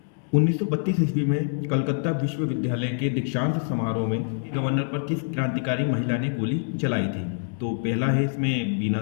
1932 ईस्वी में कलकत्ता विश्वविद्यालय के दीक्षांत समारोह में गवर्नर पर किस क्रांतिकारी महिला ने गोली चलाई थी। तो पहला है इसमें बीना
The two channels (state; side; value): silent; right; 61 dB below the other